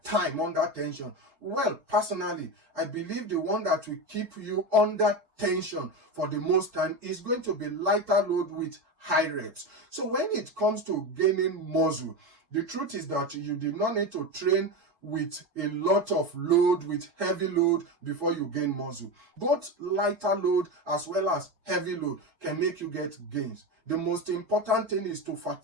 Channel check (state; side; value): late; left; 3.9 ms